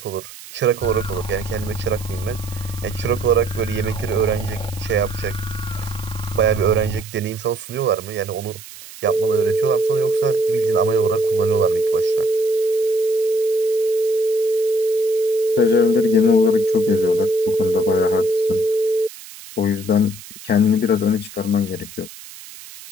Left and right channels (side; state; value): right; noise; hiss, 16 dB below the sound